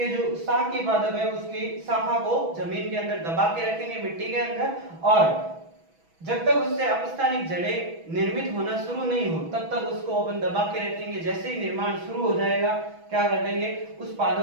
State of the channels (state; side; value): late; left; 6.1 ms